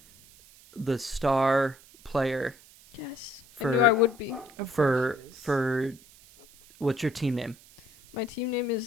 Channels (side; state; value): right; noise; hiss, 24 dB below the sound